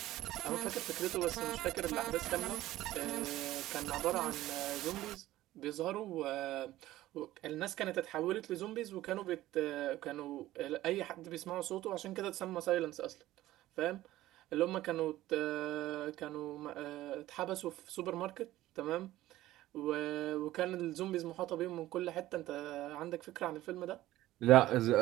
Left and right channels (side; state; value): left; quieter; 15.5 dB